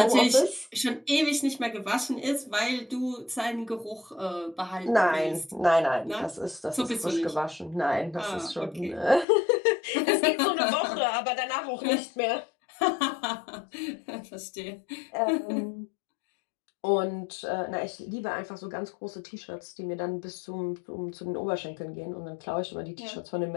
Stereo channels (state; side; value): drops out; right; at 9.2 s